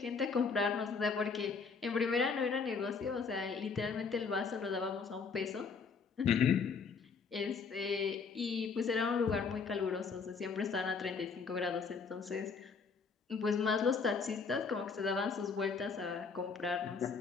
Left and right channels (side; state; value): right; quieter; 5.2 dB